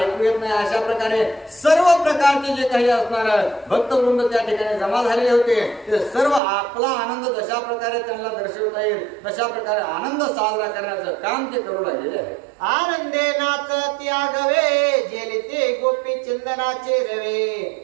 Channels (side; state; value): left; drops out; at 6.4 s